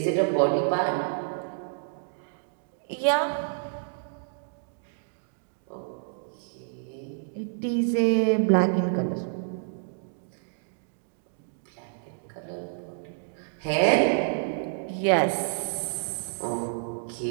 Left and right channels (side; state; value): left; silent; digital silence